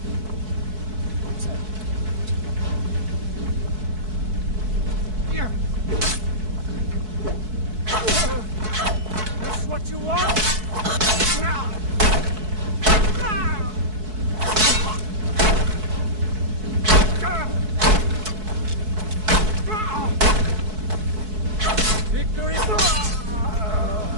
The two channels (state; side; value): late; left; 4.6 ms